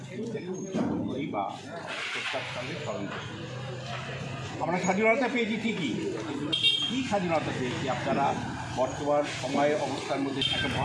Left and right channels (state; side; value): identical; both; correlation 1.00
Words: দিনটাকে উদযাপন করি বা শ্রদ্ধার সঙ্গে স্মরণ করি। আমরা স্বাধীনতা পেয়েছি ঠিকই, কী স্বাধীনতা পেয়েছি? আপনারা বর্তমান সময়ে অবস্থার মধ্যে, একটা